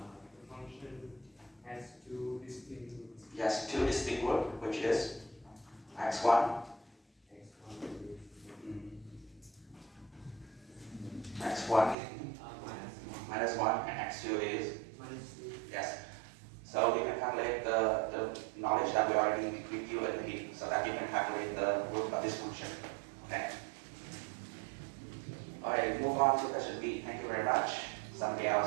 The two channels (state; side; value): drops out; left; at 12.0 s